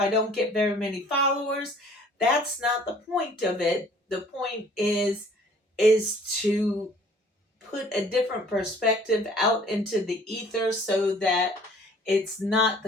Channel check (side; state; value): both; normal; correlation 0.54